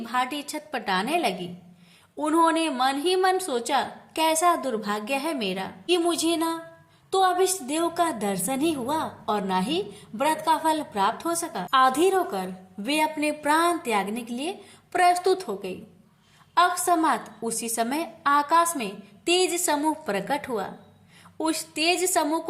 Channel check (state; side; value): identical; both; correlation 1.00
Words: छटपटाने लगी। उन्होंने मन ही मन सोचा, कैसा दुर्भाग्य है मेरा कि मुझे ना तो अभिष्ट देव का दर्शन ही हुआ और ना ही व्रत का फल प्राप्त हो सका। आधीर होकर वे अपने प्राण त्यागने के लिए प्रस्तुत हो गई। अकस्मात उसी समय आकाश में तेज समूह प्रकट हुआ। उस तेज समूह